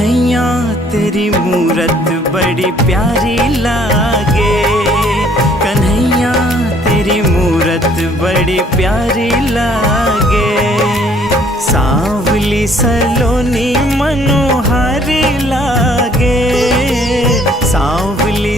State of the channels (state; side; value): normal; both; correlation 0.61